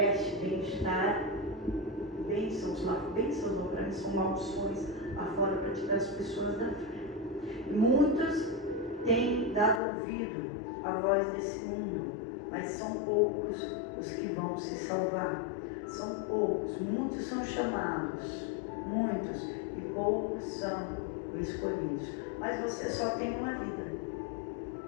bem-estar, bênçãos lá, bênçãos não, para mim são maldições lá fora para tirar as pessoas da fé. E muitos têm dado ouvido à voz desse mundo, mas são poucos os que vão se salvar. São poucos, muitos são chamados, muitos, e poucos são escolhidos. Mas você só tem uma vida.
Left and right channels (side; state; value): right; drops out; at 9.8 s